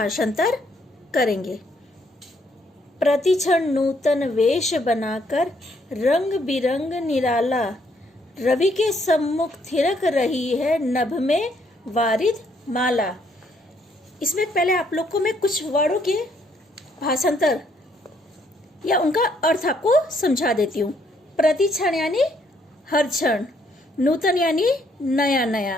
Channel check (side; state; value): both; normal; correlation 0.70